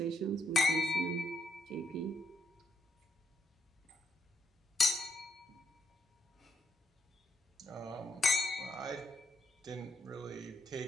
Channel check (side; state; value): both; normal; correlation 0.76